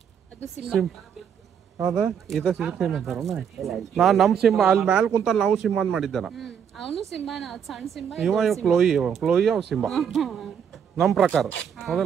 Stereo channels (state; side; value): quieter; left; 7.9 dB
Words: ಹೌದಾ ಇದ ಸಿಂಬಾ ಅಂತಾರ ನಾ ನಮ್ ಸಿಂಬಾ ಅಲ್ಲಿ ಮ್ಯಾಲ ಕುಂತ ನಾವು ಸಿಂಬಾ ಅಂತ ಮಾಡಿದ್ದಾನ ಅವನು ಸಿಂಬಾನ ಸಣ್ಣ ಸಿಂಬಾ ಇವ ಕ್ಲೋಯಿ ಅವ್ ಸಿಂಬಾ ನಮ್ ಪ್ರಕಾರ